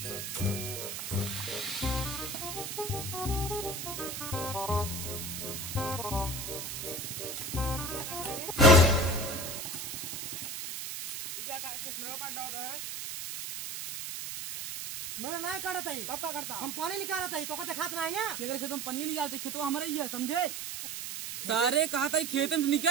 मेरा नहीं काटता ही तब क्या करता? हम पानी निकालता ही तो कहते खात नहीं ना। अगर खेतों में पानी निकालते खेतों हमारे ही है समझे। सारे कहा था खेत में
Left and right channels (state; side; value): noise; right; hiss, 6 dB below the sound